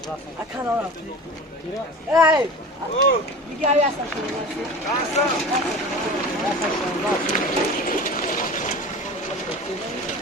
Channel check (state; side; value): normal; both; correlation 0.35